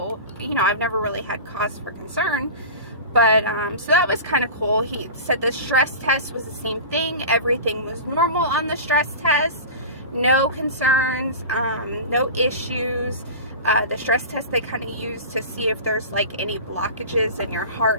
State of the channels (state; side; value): inverted; both; correlation -0.31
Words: I've never really had cause for concern. But, so that was kind of cool. He said the stress test was the same thing. Everything was normal on the stress test. No concerns, no issues. The stress test they kind of use to see if there's like any blockages in your